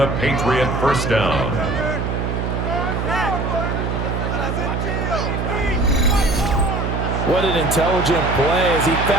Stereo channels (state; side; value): noise; right; hum, 1 dB below the sound